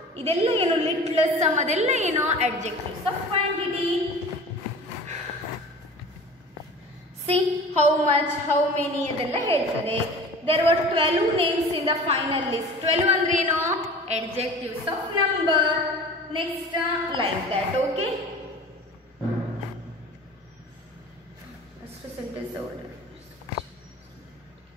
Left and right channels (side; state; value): both; normal; correlation 0.40